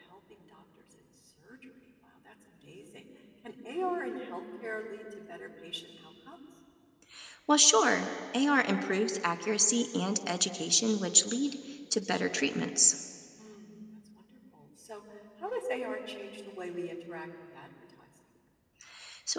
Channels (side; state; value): both; identical; correlation 1.00